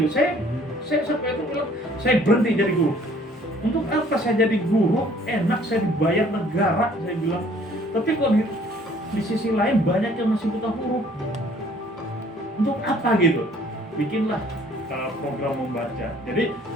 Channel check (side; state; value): both; normal; correlation 0.57